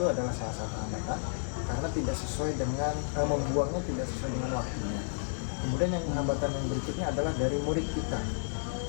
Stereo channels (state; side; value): silent; right; digital silence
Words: adalah salah satu hambatan karena tidak sesuai dengan membuangnya tidak sesuai dengan waktunya. Kemudian yang hambatan yang berikutnya adalah dari murid kita.